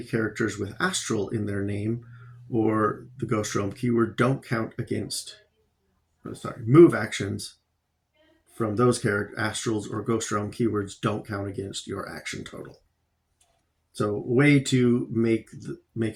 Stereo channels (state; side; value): identical; both; correlation 1.00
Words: with astral in their name or the Ghost Realm keyword don't count against... Move actions from those astrals or Ghost Realm keywords don't count against your action total. So a way to make